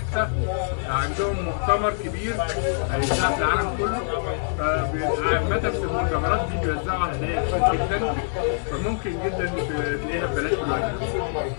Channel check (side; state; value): right; silent; 62 dB below the other